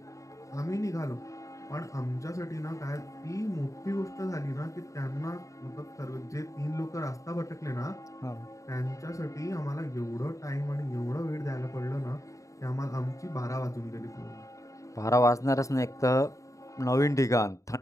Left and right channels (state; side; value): late; right; 0.16 ms